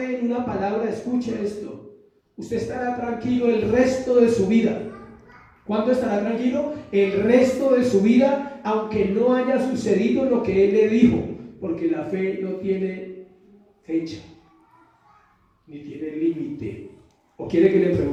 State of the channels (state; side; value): identical; both; correlation 1.00